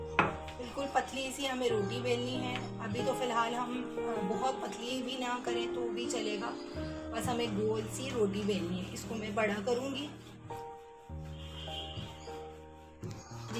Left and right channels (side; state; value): both; identical; correlation 1.00